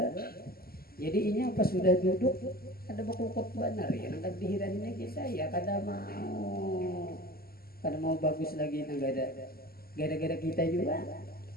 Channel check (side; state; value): right; late; 0.44 ms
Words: jadi ini apa sudah duduk ada bakul benar ya. Nangkat dihirannya kita ya kada mau bagus lagi nang ada gara-gara kita juga.